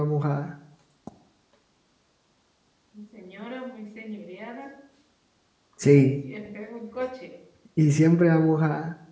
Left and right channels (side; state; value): both; identical; correlation 1.00